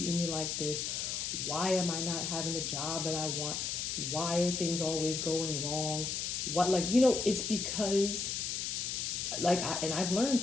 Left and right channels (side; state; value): left; noise; hiss, 2 dB below the sound